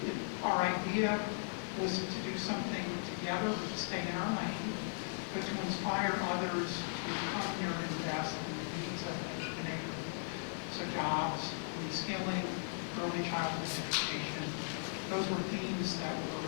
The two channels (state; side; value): silent; right; digital silence